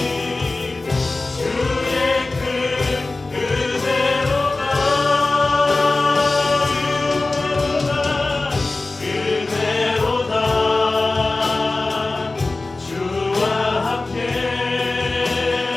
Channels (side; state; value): right; quieter; 3.3 dB